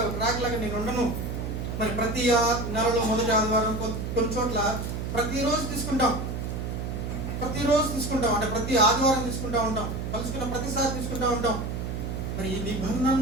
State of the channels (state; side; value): noise; right; hum, 4 dB below the sound